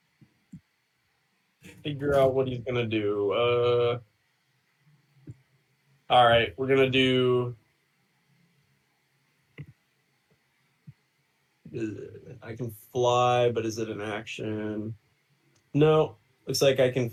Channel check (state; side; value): identical; both; correlation 1.00